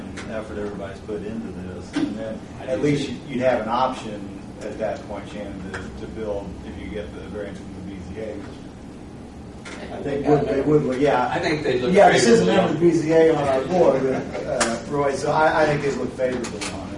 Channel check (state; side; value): identical; both; correlation 1.00